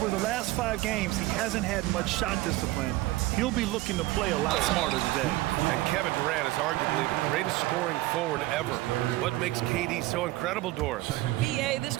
the last 5 games, he hasn't had much shot discipline. He'll be looking to play a lot smarter today. And Kevin Durant is arguably the greatest scoring forward ever. What makes KD so incredible, Doris? BA, this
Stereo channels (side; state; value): left; quieter; 18.3 dB